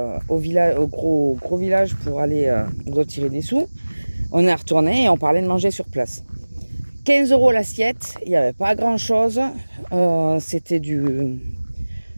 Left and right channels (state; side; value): inverted; both; correlation -1.00